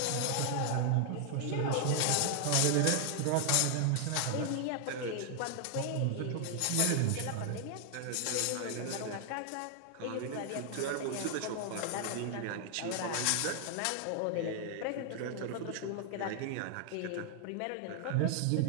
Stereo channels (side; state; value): both; different; correlation 0.00